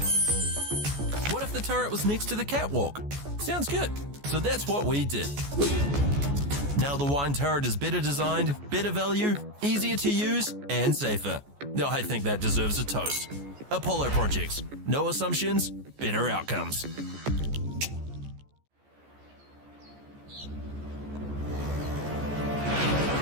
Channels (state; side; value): late; left; 14 ms